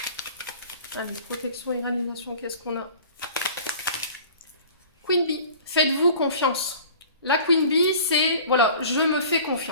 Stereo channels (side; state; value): both; inverted; correlation -0.44